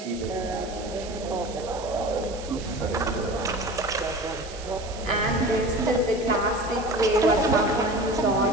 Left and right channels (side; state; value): right; noise; hiss, 16 dB below the sound